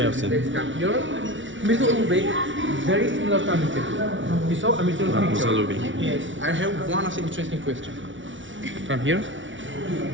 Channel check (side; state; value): left; late; 0.56 ms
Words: of them. Middle Uzbek, very similar to Amitul. You saw Amitul picture? Uzbek. Yes. I have one of the interesting question. From here?